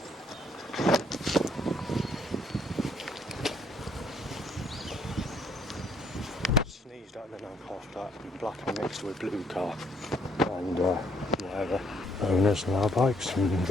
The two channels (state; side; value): normal; both; correlation 0.67